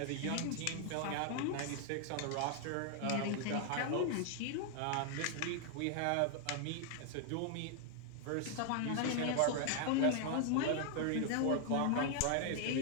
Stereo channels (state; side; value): different; both; correlation 0.00